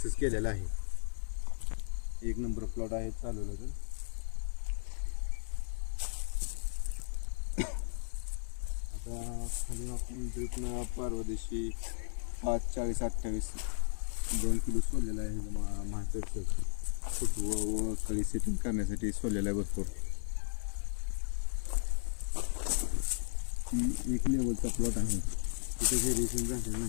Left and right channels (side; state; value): right; silent; digital silence